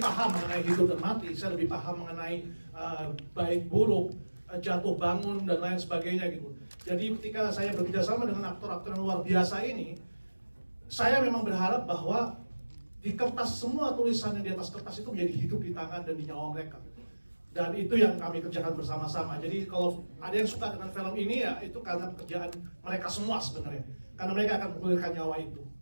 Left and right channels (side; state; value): both; inverted; correlation -1.00